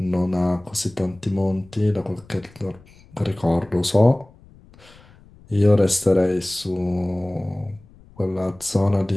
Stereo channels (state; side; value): noise; left; rumble, 25 dB below the sound